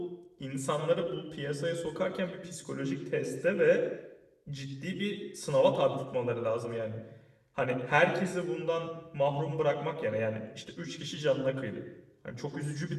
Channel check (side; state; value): both; identical; correlation 1.00